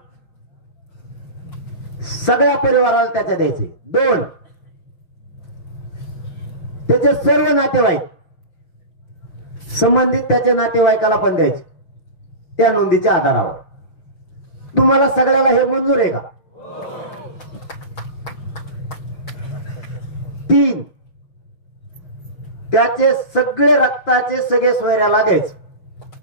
सगळ्या परिवाराला त्याच्या द्यायचे. 2, त्याचे सर्व नातेवाईक, संबंधित त्याच्या नातेवाईकाला पण द्यायचे त्या नोंदीच्या आधारावर. तुम्हाला सगळ्याला हे मंजूर आहे का? 3, त्याचे सगळे रक्ताचे सगळे सोयऱ्याला द्यायचे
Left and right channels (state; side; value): late; right; 5.9 ms